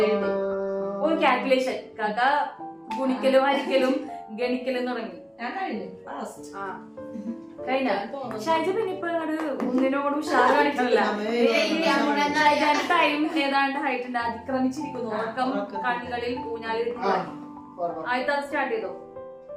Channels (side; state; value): both; identical; correlation 1.00